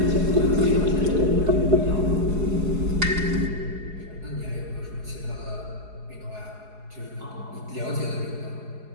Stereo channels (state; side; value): late; left; 4.8 ms